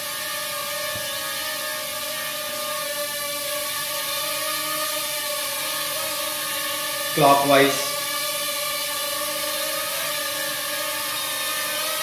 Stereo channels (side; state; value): both; identical; correlation 1.00